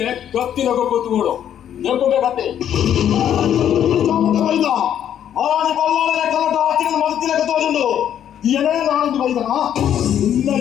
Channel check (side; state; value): right; quieter; 10.0 dB